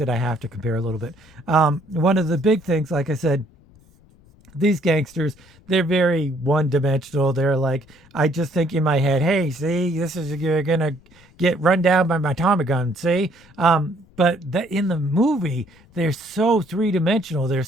I have to compare a little bit. One of the big things, like I said, these gangsters, they're very one-dimensional. They're like, I just think in my head, hey, see, you're gonna get run down by my Tommy gun, see? But in the movie, they're so three-dimensional. They're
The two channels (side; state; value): left; noise; rumble, 28 dB below the sound